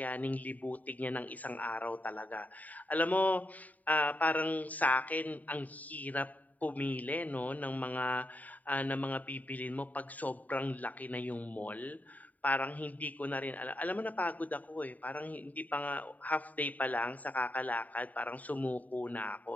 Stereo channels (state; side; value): late; right; 0.075 ms